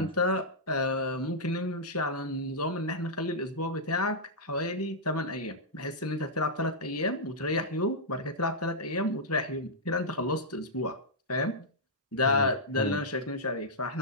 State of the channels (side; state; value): both; normal; correlation -0.10